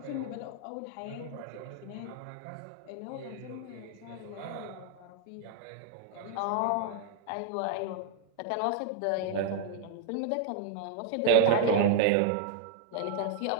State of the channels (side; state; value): both; different; correlation 0.00